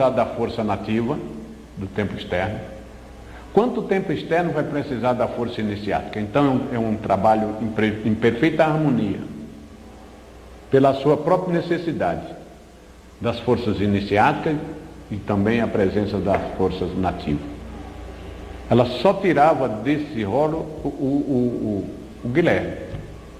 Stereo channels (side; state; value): both; identical; correlation 1.00